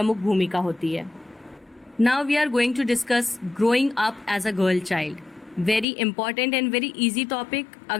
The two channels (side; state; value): right; drops out; at 5.9 s